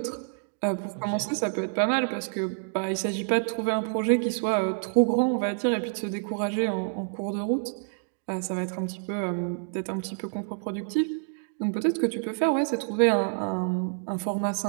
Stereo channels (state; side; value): silent; left; digital silence